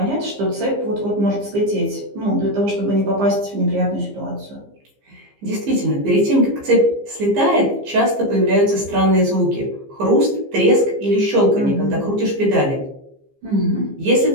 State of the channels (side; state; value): left; late; 15 ms